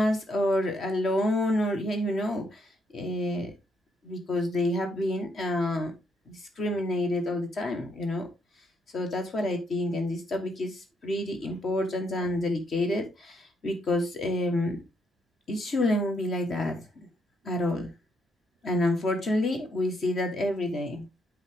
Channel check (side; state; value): both; normal; correlation 0.74